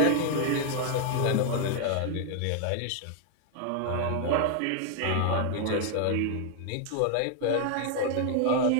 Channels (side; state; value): both; different; correlation 0.00